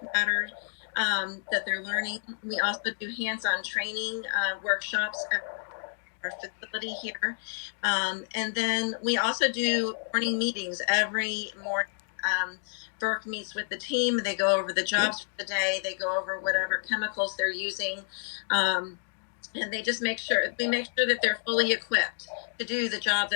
matters that they're learning. We also do hands-on training workshops at our facility here. And then we also do morning meetings every morning. Burke meets with the team. They go over the jobs for the day. They go over whatever chemicals they're using. and they just make sure that they're fully equipped to do the job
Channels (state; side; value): silent; right; digital silence